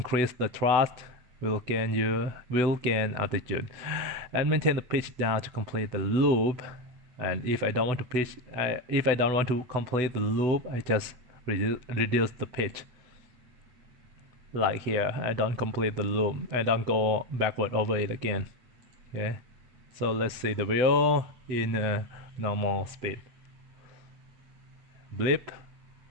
the thrust, will gain altitude, and maintain the pitch down to complete the loop. And if I don't want to complete the loop, I just reduce the pitch. Like here, I don't complete the loop. I don't go backward over it again. Okay, so let's see the video in normal speed. Blip,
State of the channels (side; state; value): left; late; 8.0 ms